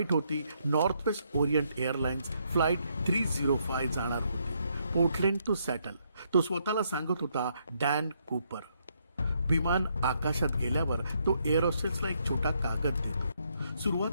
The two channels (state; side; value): inverted; both; correlation -0.74